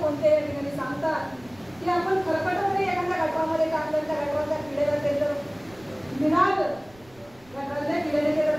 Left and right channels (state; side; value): noise; right; rumble, 26 dB below the sound